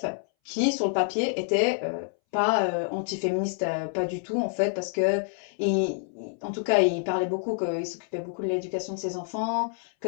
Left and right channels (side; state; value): right; silent; 60 dB below the other